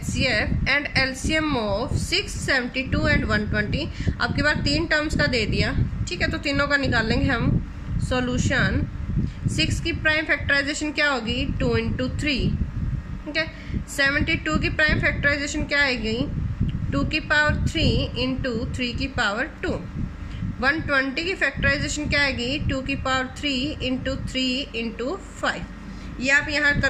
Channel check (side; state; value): both; identical; correlation 1.00